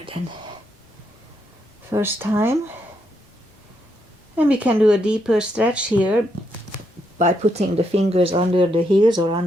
than first time. And we can do a deeper stretch here by putting the fingers under the heels or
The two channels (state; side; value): normal; both; correlation 0.78